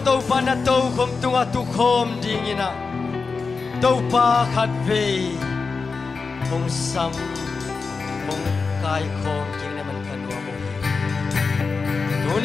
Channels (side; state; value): right; quieter; 4.6 dB